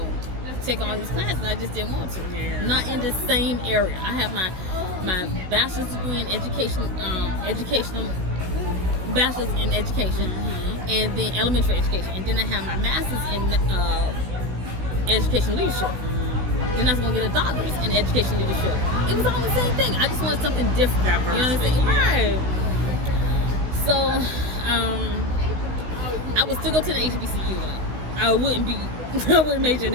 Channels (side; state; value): left; late; 16 ms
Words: take all these classes. I just didn't want to. Yeah. Not in the same area. I have my bachelor's degree in educational bachelor's in education, and then elementary education, and then I have my master's in education leadership. Then I was gonna get a doctorate in education leadership. It was all the same thing. I just wanted something different. Diversity, You know what I'm saying? yeah. Right. So I would still go to the HBCU though. I wouldn't major in